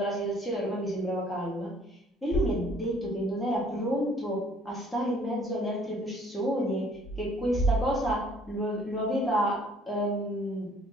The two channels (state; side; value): normal; both; correlation 0.59